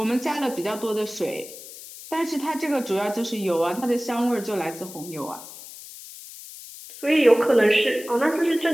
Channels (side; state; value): left; noise; hiss, 15 dB below the sound